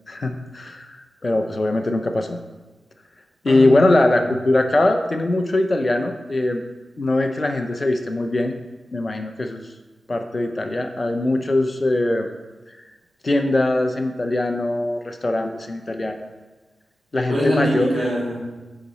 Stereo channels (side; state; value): both; normal; correlation 0.95